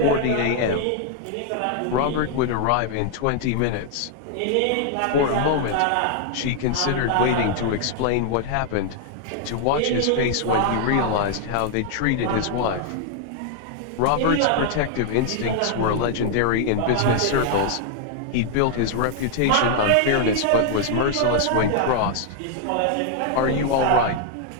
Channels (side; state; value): both; different; correlation 0.00